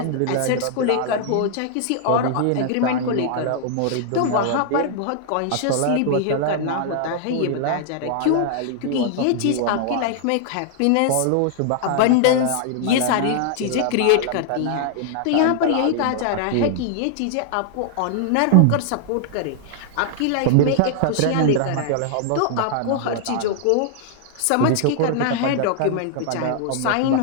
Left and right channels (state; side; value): different; both; correlation -0.01